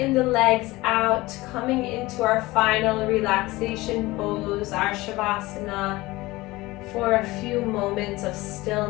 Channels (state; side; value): quieter; right; 20.1 dB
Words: the legs out, coming into our final relaxation pose, our Shavasana, for a few moments of